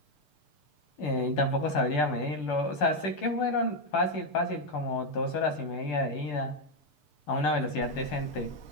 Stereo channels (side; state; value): right; late; 6.8 ms